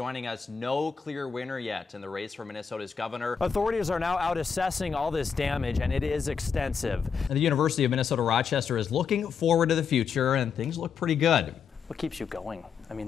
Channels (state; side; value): quieter; right; 6.4 dB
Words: us, no clear winner yet in the race for Minnesota's governor. Authorities are now out assessing all this damage, and it is extensive. The University of Minnesota Rochester is looking forward to the future, and things look pretty good. What keeps you going? I